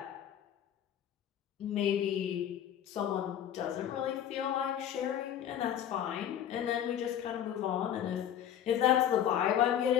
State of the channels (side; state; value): right; quieter; 10.2 dB